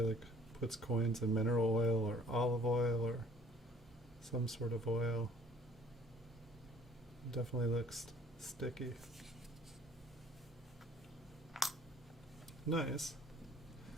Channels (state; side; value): normal; both; correlation 0.55